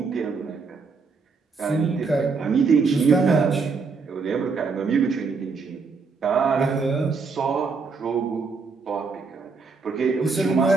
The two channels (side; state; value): left; quieter; 4.7 dB